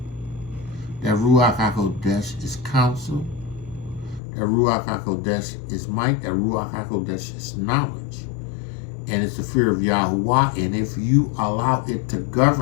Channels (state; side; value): drops out; right; at 4.2 s